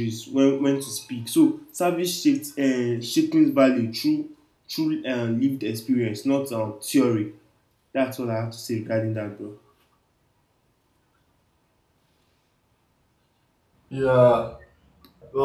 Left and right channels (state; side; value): identical; both; correlation 1.00